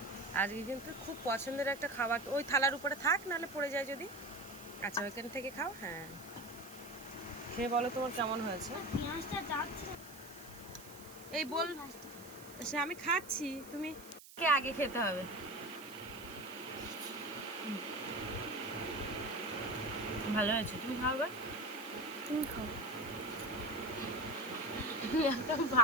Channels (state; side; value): noise; right; hiss, 18 dB below the sound